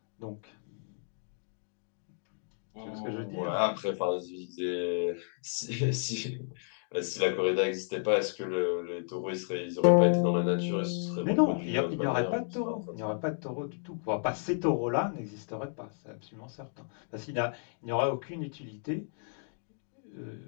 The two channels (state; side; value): silent; right; digital silence